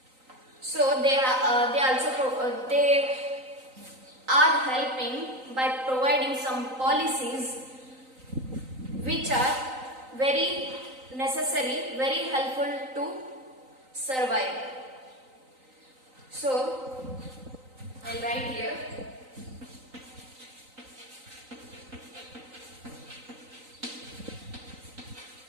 So they are helping by providing some policies which are very necessary, very helpful to survive. So I'll write here.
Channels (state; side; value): late; left; 3.9 ms